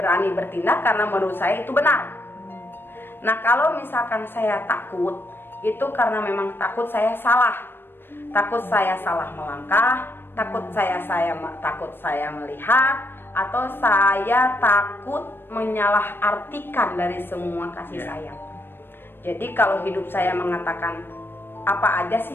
bertindak karena menurut saya itu benar. Nah, kalau misalkan saya takut, itu karena memang takut saya salah. Takut saya salah melangkah, takut saya melihat, atau saya takut menyalahartikan dari semua kasih sayang. Jadi kalau hidup saya mengatakan apa aja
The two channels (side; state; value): right; late; 0.10 ms